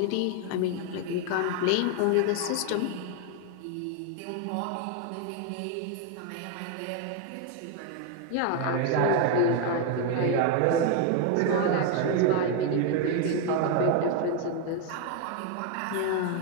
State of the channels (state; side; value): different; both; correlation 0.01